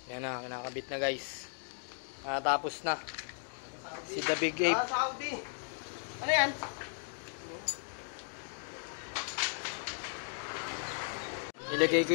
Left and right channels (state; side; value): silent; right; 54 dB below the other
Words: Yan na, kinakabit na guys. Natapos na. Si The Big Ape. Saudi. Ano yan? Ilagay ko